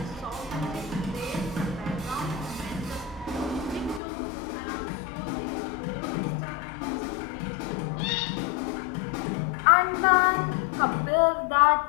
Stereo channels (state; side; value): drops out; right; at 4.0 s